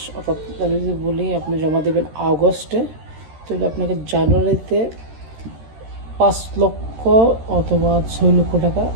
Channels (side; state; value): left; late; 13 ms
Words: অর্থাৎ আমি যদি বলি আপনি জমা দেবেন আগস্টে, তাহলে আপনাকে জানুয়ারিতে 5 লক্ষ অথবা 6 লক্ষ টাকা